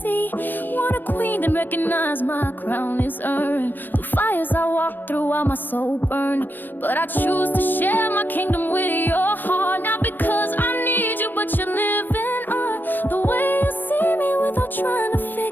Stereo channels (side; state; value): right; late; 0.092 ms